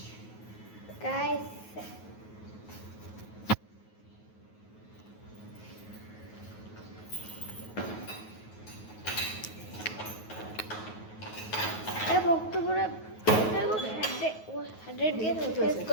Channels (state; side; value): late; right; 9.4 ms